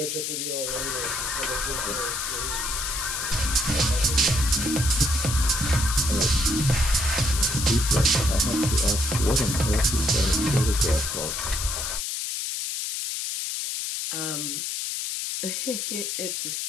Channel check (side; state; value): left; noise; hiss, 3 dB below the sound